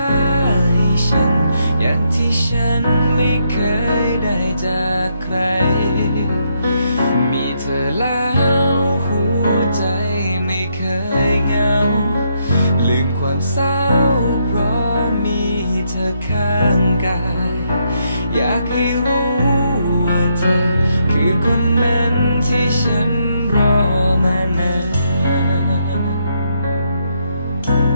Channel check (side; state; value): both; inverted; correlation -0.77